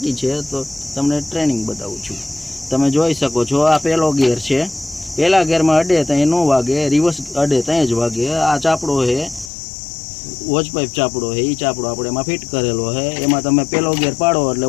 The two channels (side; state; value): right; drops out; at 9.5 s